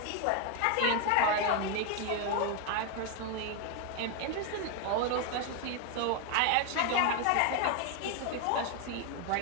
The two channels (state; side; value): different; both; correlation 0.01